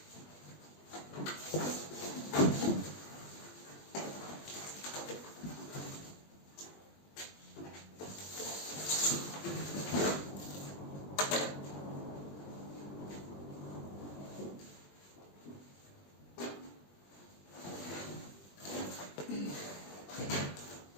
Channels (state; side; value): late; right; 20 ms